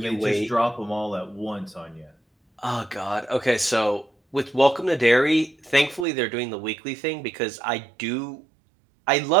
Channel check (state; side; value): drops out; left; at 6.1 s